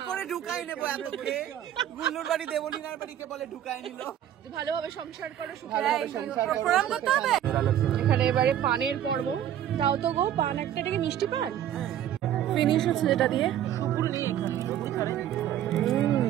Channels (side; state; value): left; quieter; 10.9 dB